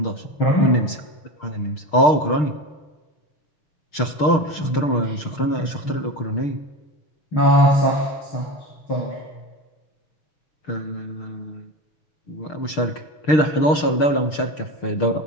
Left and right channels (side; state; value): right; late; 6.6 ms